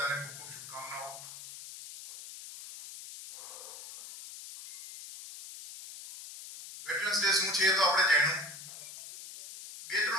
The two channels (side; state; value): left; noise; hiss, 13 dB below the sound